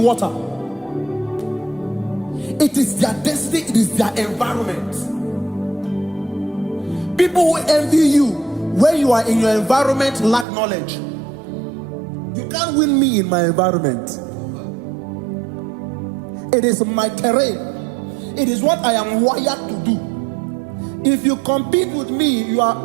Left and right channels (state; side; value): drops out; left; at 10.5 s